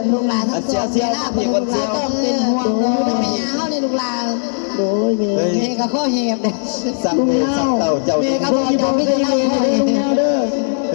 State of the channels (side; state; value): right; silent; digital silence